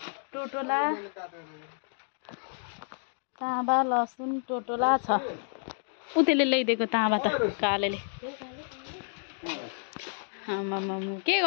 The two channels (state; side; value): silent; right; digital silence